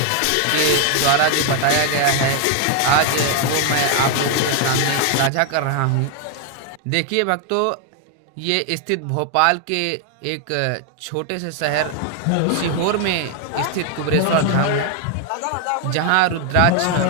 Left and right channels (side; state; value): both; different; correlation 0.00